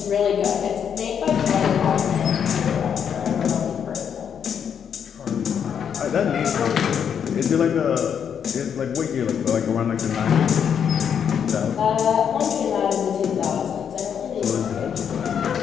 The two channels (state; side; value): quieter; right; 7.9 dB